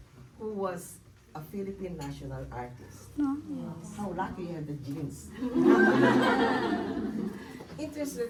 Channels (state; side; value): identical; both; correlation 1.00